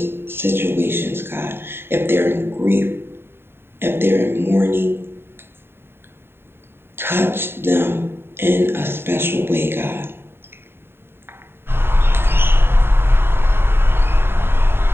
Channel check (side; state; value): left; late; 0.11 ms